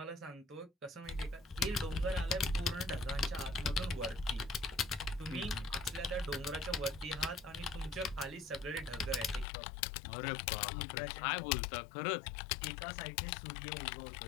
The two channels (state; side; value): drops out; right; at 9.5 s